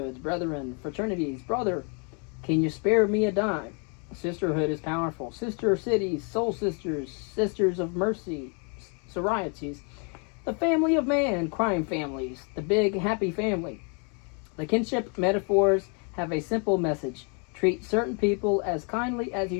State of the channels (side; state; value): right; quieter; 37.4 dB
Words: brethren, fraternities, brother, can you spare me a dime? Sisterhood is powerful. Sister cities, soul sisters, sisters of mercy, sororities, the family of man, crime families, the big happy family. The kinship metaphors have a simple message. Treat certain people as kindly as